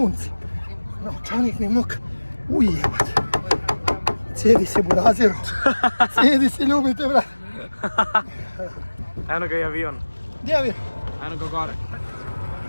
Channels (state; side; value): inverted; both; correlation -1.00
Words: Novčanik mi mokar. Uj, jebote. Cijedi se, burazeru. Cijedi se, ljubite, brat. Eno ga i avion. Gdje avion? Eno ga gore.